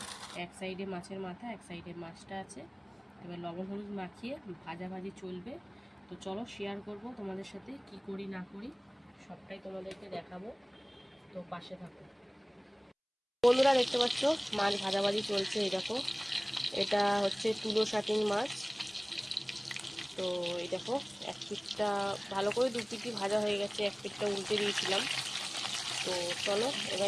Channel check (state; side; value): identical; both; correlation 1.00